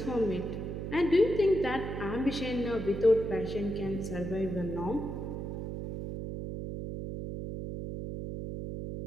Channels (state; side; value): noise; right; hum, 5 dB below the sound